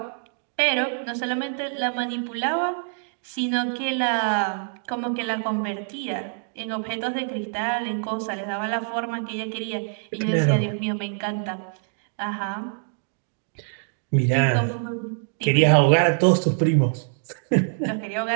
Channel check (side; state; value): left; silent; digital silence